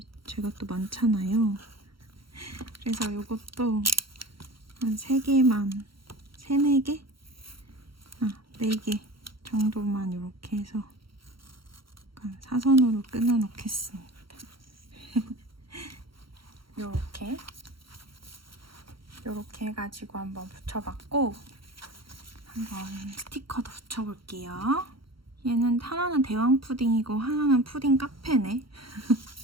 제가 또 많잖아요. 그래서 이것도 한 3개만, 3, 4개? 4개 정도만 이렇게 해서 약간 사선으로 끊어 놓겠습니다. 요렇게 해가지고 한번 붙여봤고, 한번 스티커도 붙여볼게요. 얘는 하나는 대왕 푸딩이고 하나는 푸딩 카페네.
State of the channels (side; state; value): left; late; 0.74 ms